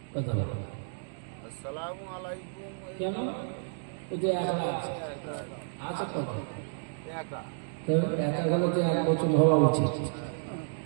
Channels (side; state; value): left; silent; digital silence